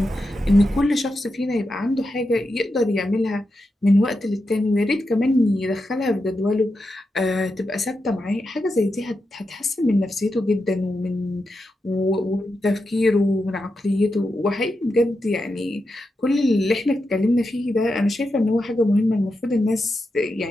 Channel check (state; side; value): normal; both; correlation 0.87